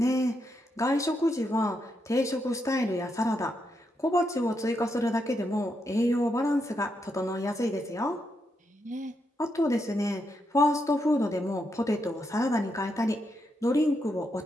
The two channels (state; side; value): normal; both; correlation 0.81